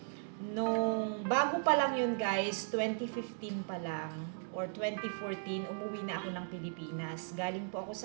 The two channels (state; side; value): silent; left; digital silence